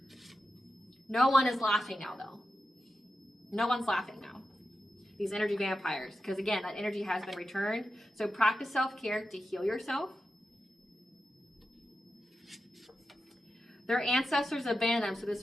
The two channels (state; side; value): normal; both; correlation 0.90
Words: No one is laughing now, though. No one's laughing now. These energy vampires. Because again, that energy has been returned. So practice self-care to heal yourself. Their ancestors abandoned them. So